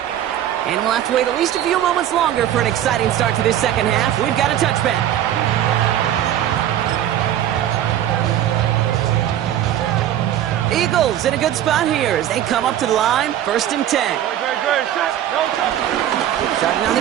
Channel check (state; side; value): quieter; left; 11.5 dB